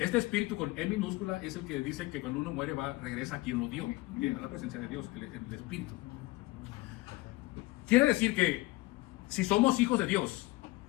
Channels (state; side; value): quieter; right; 21.1 dB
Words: espíritu con E minúscula es el que dice que cuando uno muere regresa a quien lo dio, a la presencia de Dios, el espíritu. Quiere decir que si somos hijos de Dios,